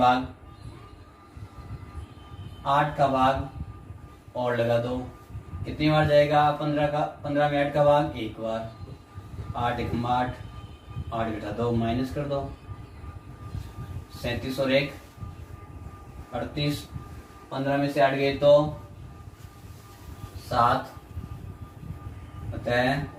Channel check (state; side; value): identical; both; correlation 1.00